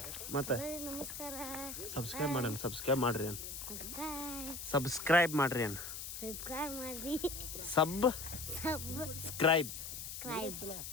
ಮತ್ತೆ ಸಬ್ಸ್ಕ್ರೈಬ್ ಮಾಡ್ರಿ. ಸಬ್ಸ್ಕ್ರೈಬ್ ಮಾಡ್ರಿ ಅನ್ ಸಬ್ಸ್ಕ್ರೈಬ್ ಮಾಡ್ರಿ ಅನ್ ಸಬ್ಸ್ಕ್ರೈಬ್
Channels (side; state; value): left; noise; hiss, 7 dB below the sound